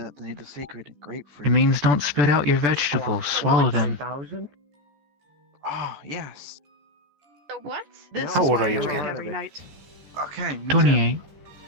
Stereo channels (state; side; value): late; left; 14 ms